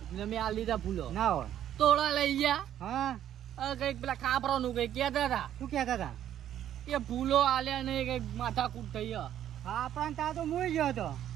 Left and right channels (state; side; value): quieter; left; 11.0 dB